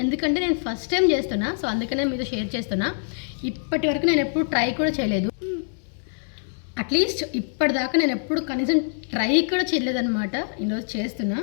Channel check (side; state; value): right; silent; digital silence